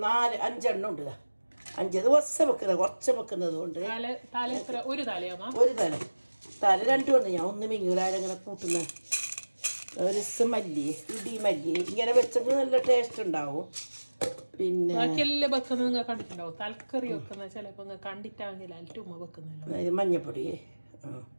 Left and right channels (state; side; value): inverted; both; correlation -1.00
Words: 4-5 ഉണ്ട്. 5 ദിവസം വെക്കുന്നത് കുറച്ച് വെക്കുന്നത് കൊണ്ട് ഒരു തലയാ ഒരു തല 2 ഉണ്ട്. ഞാൻ ഒന്ന് മിങ്ങൂലാരങ്ങനെ കൂട്ടുന്ന ഒരു ദിവസം മല്ലി ഇടി മല്ലി ഇങ്ങനെ വെച്ചെങ്കിൽ നല്ല ടേസ്റ്റ് ഉണ്ടാവും. പിന്നെ കണ്ടിട്ടുണ്ടാവും തലക്കറി വെക്കുന്ന ചിലപ്പോ കണ്ടിട്ടാണെങ്കിൽ മഞ്ഞപ്പൊടി